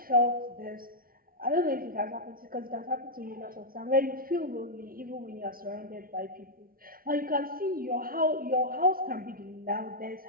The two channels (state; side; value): late; left; 0.42 ms